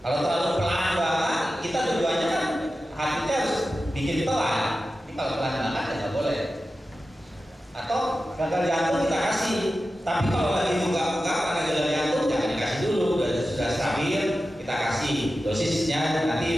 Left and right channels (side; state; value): both; normal; correlation 0.93